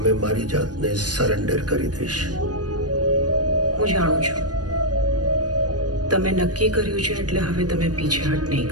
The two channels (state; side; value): late; left; 0.69 ms